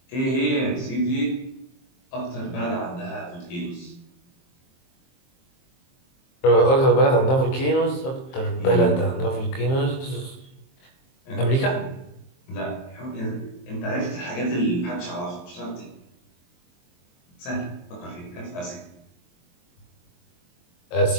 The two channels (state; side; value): late; right; 23 ms